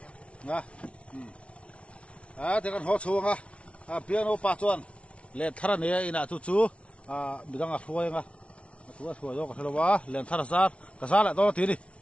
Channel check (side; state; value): right; late; 0.061 ms